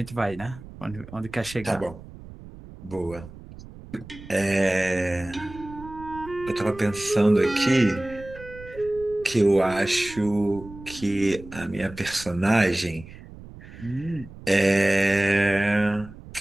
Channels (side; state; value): right; noise; rumble, 17 dB below the sound